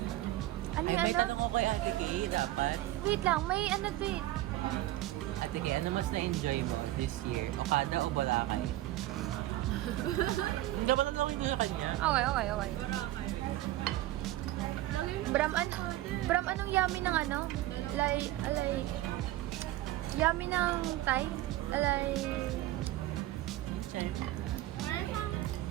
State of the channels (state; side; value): quieter; left; 15.8 dB